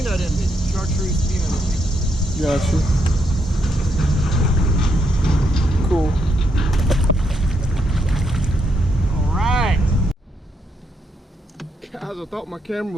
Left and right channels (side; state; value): both; normal; correlation 0.77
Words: envy, chartreuse peanut envy. Gotcha. Cool. All right. Guys, I thought my camera